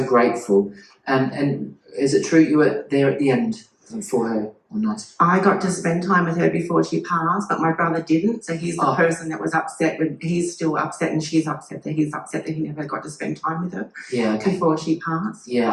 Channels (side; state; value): both; identical; correlation 1.00